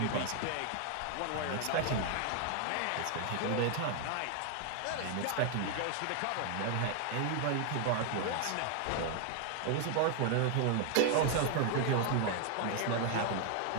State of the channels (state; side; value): different; both; correlation 0.00